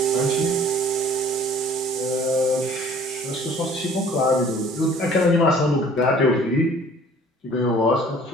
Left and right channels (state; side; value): normal; both; correlation 0.52